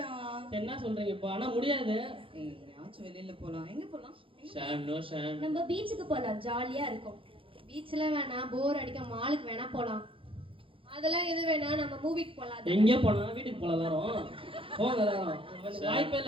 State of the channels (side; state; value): left; late; 0.26 ms